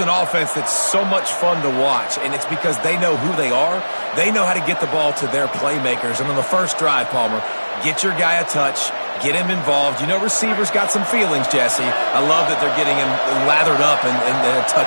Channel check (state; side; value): inverted; both; correlation -1.00